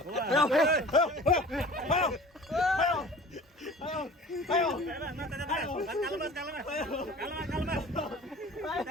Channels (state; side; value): normal; both; correlation 0.44